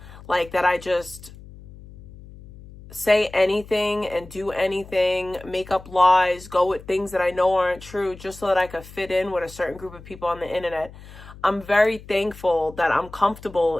Like, that I just say anything and do anything, make up lies, go with things that I know aren't true just so that I could fit in with a certain group of people on the internet. I'm very thankful that I'm comfortable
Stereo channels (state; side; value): noise; left; hum, 18 dB below the sound